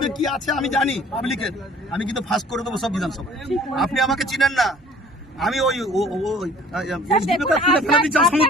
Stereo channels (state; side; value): normal; both; correlation 0.51